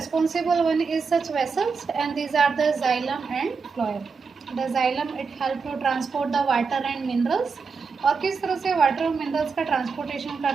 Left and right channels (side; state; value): left; quieter; 5.1 dB